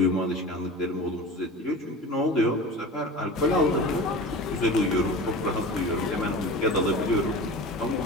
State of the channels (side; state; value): both; normal; correlation 0.34